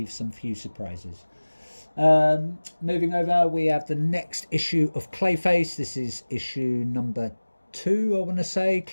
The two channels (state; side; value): inverted; both; correlation -1.00